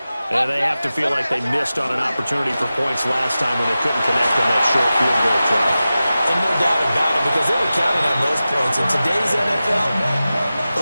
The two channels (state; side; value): inverted; both; correlation -0.94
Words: And they have to feel like they missed on an opportunity for points last time when they couldn't connect on that short field goal try. And no doubt about it, because they were counting on those points. In today's